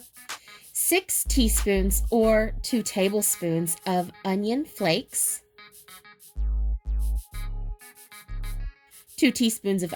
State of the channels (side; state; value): both; identical; correlation 1.00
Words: 6 teaspoons or 2 tablespoons of onion flakes, 2 teaspoons of